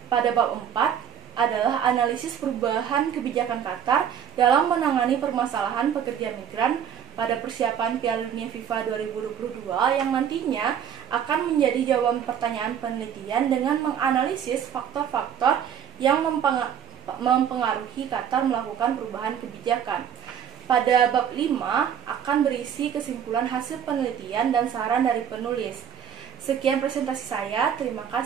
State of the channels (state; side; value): quieter; left; 8.7 dB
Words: Pada bab 4 adalah analisis perubahan kebijakan Qatar dalam menangani permasalahan pekerja migran pada persiapan Piala Dunia FIFA 2022 yang nantinya akan menjadi jawaban pertanyaan penelitian dengan menganalisis faktor-faktor yang mempengaruhi Qatar melakukan perubahan kebijakan. Pada bab 5 akan berisi kesimpulan hasil penelitian dan saran dari penulis. Sekian presentasi saya, terima